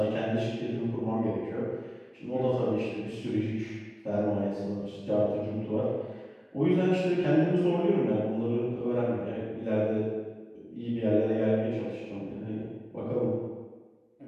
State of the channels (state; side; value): identical; both; correlation 1.00